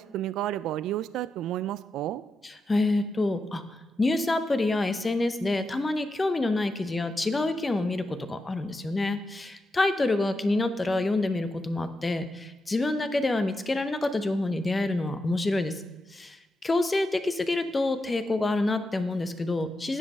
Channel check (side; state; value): both; normal; correlation 0.87